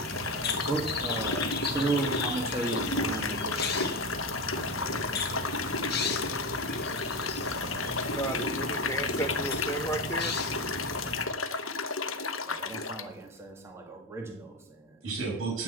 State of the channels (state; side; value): normal; both; correlation 0.17